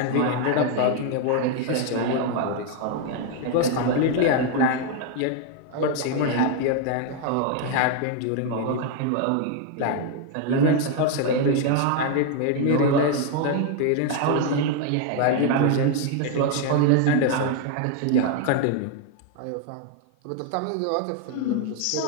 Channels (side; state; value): both; different; correlation 0.01